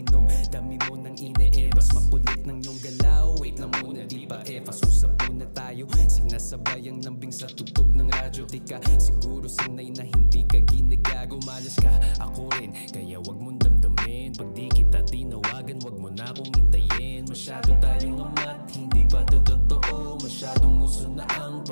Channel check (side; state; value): both; inverted; correlation -1.00